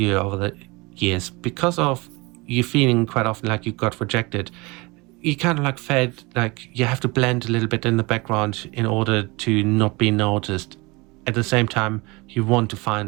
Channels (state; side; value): quieter; left; 25.2 dB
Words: over the years, because of you feeling quite often like you got rejected, you kind of like felt like you have to blend a little bit in the background in order to not be noticed. At the same time, you want to